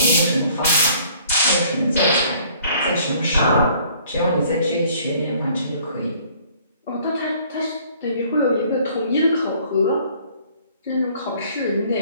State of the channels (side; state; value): both; inverted; correlation -0.58